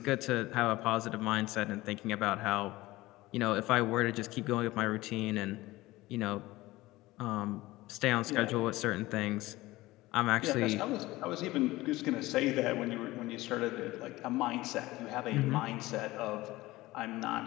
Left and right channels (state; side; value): quieter; right; 18.7 dB